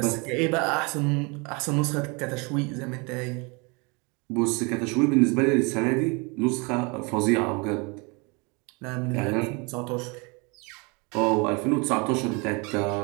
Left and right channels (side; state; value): left; quieter; 30.2 dB